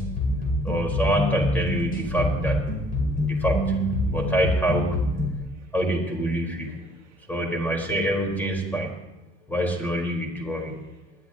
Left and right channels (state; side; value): normal; both; correlation 0.61